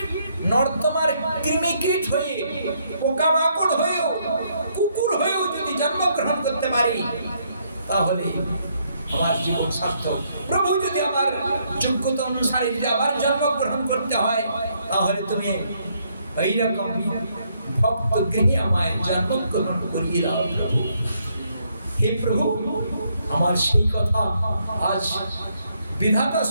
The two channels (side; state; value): both; inverted; correlation -0.72